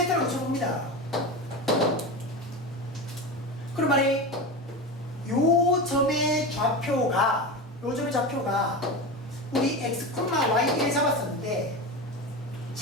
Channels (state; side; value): normal; both; correlation 0.24